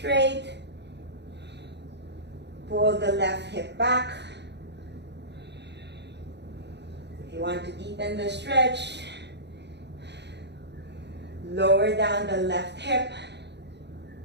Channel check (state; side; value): late; left; 0.50 ms